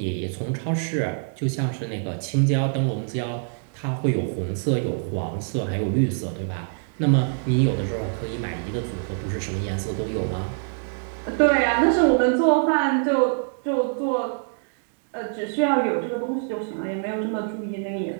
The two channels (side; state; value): left; silent; digital silence